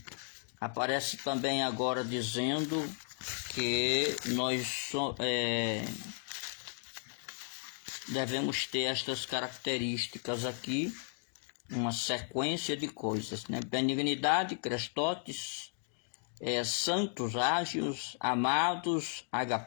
Aparece também agora dizendo que nós devemos ter estas características aqui, uma sequência de coisas, né? Benignidade, crestotes, santos, ágios, amados,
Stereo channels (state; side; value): silent; right; 55 dB below the other